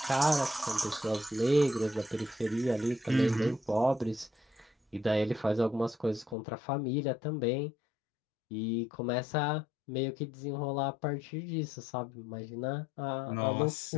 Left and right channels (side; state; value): right; drops out; at 6.4 s